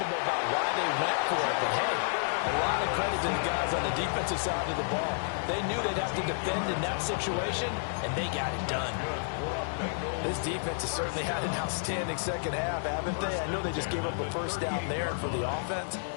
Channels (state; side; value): silent; right; digital silence